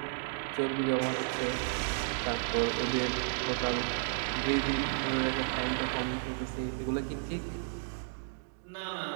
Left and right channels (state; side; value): silent; left; digital silence